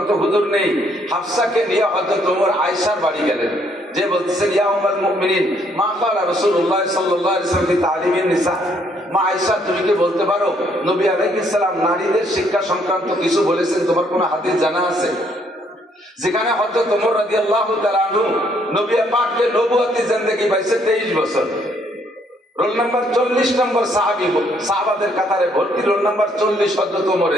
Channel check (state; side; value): normal; both; correlation 0.68